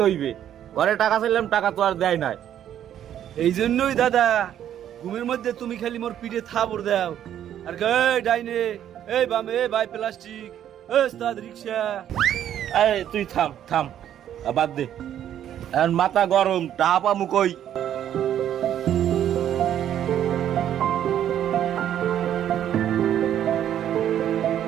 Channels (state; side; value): quieter; left; 10.6 dB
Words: হইবে। ঘরে টাকা চাইলাম, টাকা তো আর দেয় নাই। এই জন্যই দাদা ঘুমের মধ্যে তুমি খালি মোর পিঠে থাবড় দাও আর এই ডাইনে, এই বামে, এই ভাই প্লাস্টিক, এই ওস্তাদ রিক্সা। এই তুই থাম থাম, বাদ দে। এখন মাথা গরম, টাহা পামু কই?